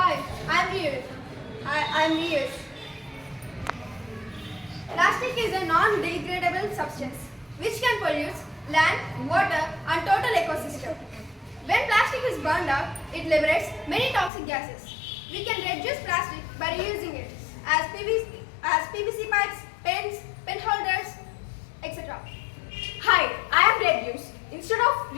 I'm Riyash. Plastic is a non-degradable substance which can pollute land, water and total ecosystem. When plastic is burned out, it liberates many toxic gases. We can reduce plastic by reusing it as PVC pipes, pens, pen holders, etc. Hi, I am Reduce. Instead of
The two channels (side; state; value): right; drops out; at 14.3 s